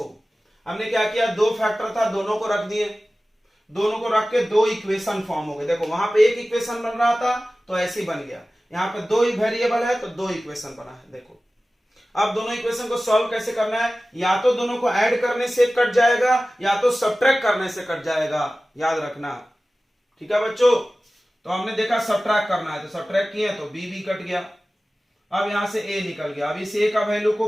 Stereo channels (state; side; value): normal; both; correlation 0.96